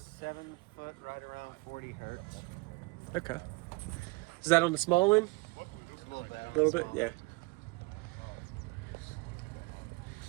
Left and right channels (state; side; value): quieter; left; 26.3 dB